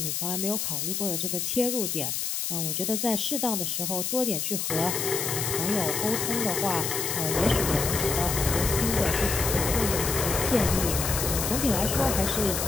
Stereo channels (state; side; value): noise; left; hiss, 1 dB below the sound